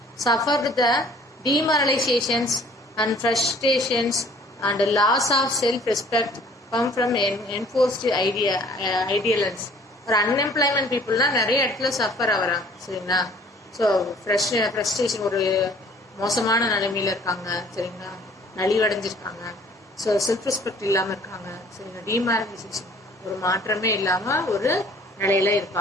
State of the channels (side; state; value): both; normal; correlation 0.55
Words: suffered the demoralizations and frustrations and loss of self-respect come from enforced ideals. ஒரு அன்எம்ப்ளாய்மெண்ட் பீப்புள்லாம் நிறைய இடத்துல சஃபர் ஆகிறாங்க சரிங்களா. ஸோ ஃப்ரஸ்ட்ரேஷன் ஒரு மோசமான நிலைமையில இருக்காங்க சரிங்களா, நலிவடைஞ்சிருக்காங்க. ஸோ செல்ஃப் ரெஸ்பெக்ட் இல்லாமல் இருக்காங்க சரிங்களா, டிமாரலைசேஷன் ஒரு மாற்றமே இல்லாமல் ஒரு நிலையில